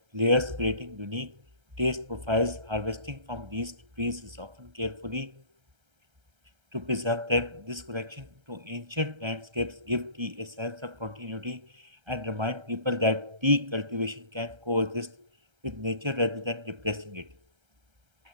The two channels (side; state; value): left; late; 1.3 ms